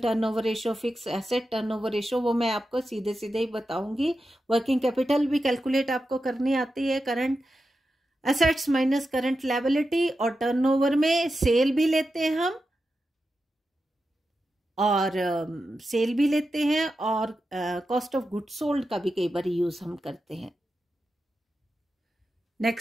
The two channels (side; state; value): both; normal; correlation 0.90